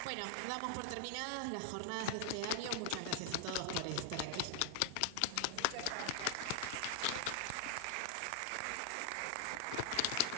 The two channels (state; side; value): different; both; correlation 0.00